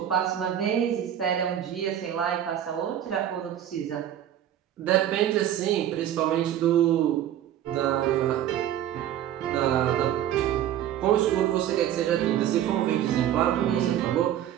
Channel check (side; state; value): left; quieter; 11.0 dB